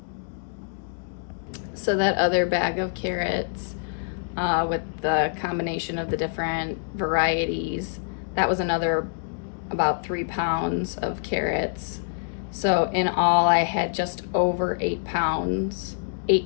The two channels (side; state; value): right; silent; digital silence